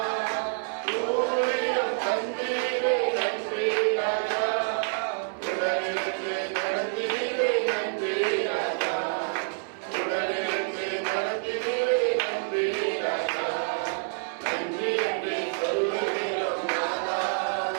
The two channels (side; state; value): left; silent; 58 dB below the other